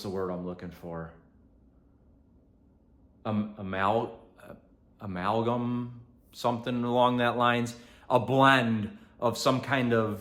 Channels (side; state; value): both; identical; correlation 1.00